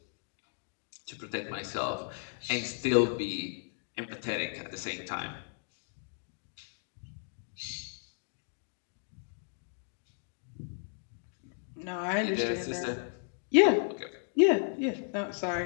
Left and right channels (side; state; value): right; silent; digital silence